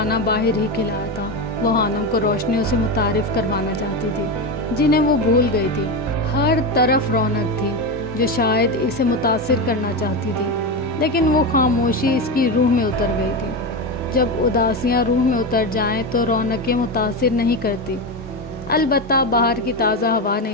باہر ہی کھلایا تھا۔ وہ خانم کو روشنیوں سے متعارف کروانا چاہتی تھی جنہیں وہ بھول گئی تھی۔ ہر طرف رونق تھی جو شاید اسے متاثر کرنا چاہتی تھی، لیکن وہ خاموشی اس کی روح میں اتر گئی تھی۔ جب اداسیاں روح میں اتر جائیں تو رونقیں متاثر نہیں کرتی۔ البتہ باہر کی تازہ ہوا نے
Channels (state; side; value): normal; both; correlation 0.16